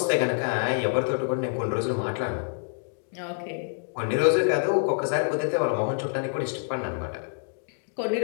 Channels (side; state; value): right; silent; digital silence